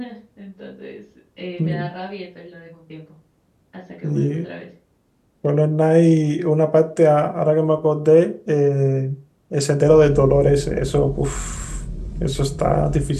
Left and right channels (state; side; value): identical; both; correlation 1.00